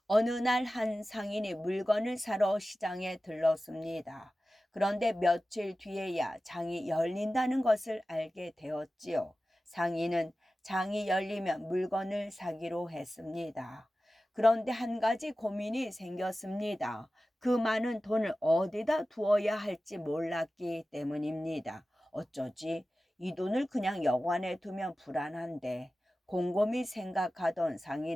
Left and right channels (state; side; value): normal; both; correlation 0.95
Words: 어느 날 한 상인이 물건을 사러 시장에 들렀습니다. 그런데 며칠 뒤에야 장이 열린다는 것을 알게 되었지요. 상인은 장이 열리면 물건을 사기로 했습니다. 그런데 한 가지 고민이 생겼습니다. 그 많은 돈을 어디다 두어야 할지 몰랐기 때문입니다. 어쩌지? 이 돈을 그냥 여관에 두면 불안한데. 곰곰이 생각하던